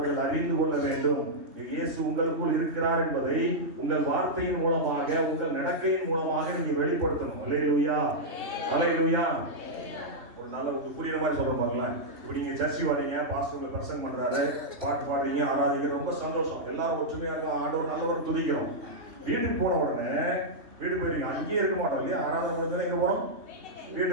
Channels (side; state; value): left; late; 3.2 ms